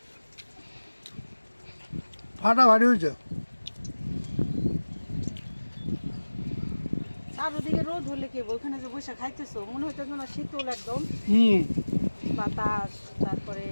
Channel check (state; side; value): inverted; both; correlation -1.00